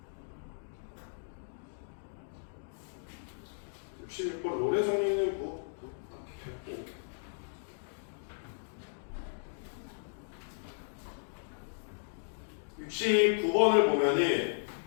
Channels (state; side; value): silent; right; digital silence